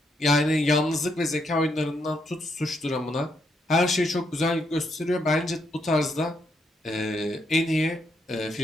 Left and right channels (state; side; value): normal; both; correlation 0.77